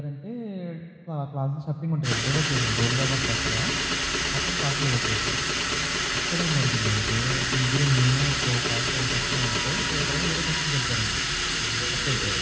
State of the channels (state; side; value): identical; both; correlation 1.00